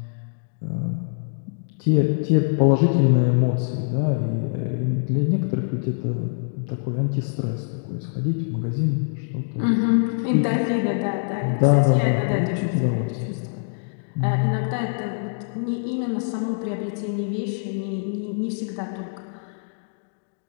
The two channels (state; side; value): silent; right; digital silence